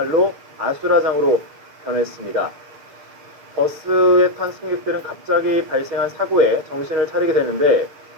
아수라장으로 변했습니다. 버스에 탄 승객들은 갑자기 발생한 사고에 정신을 차리게 되는데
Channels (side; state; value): left; late; 6.6 ms